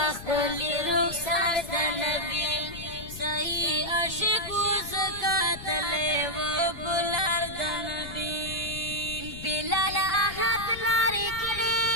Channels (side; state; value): left; noise; rumble, 13 dB below the sound